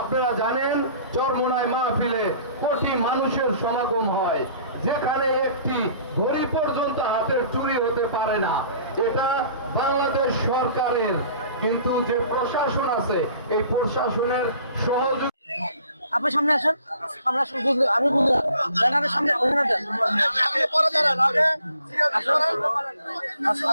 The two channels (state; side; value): inverted; both; correlation -0.54